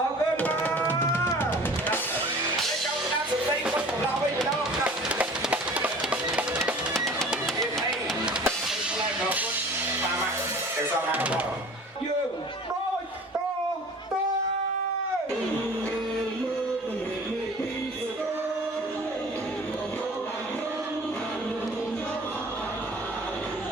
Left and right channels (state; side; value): normal; both; correlation 0.44